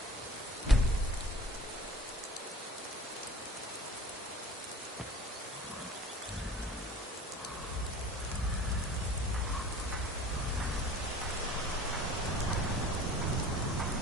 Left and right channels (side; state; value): both; normal; correlation 0.45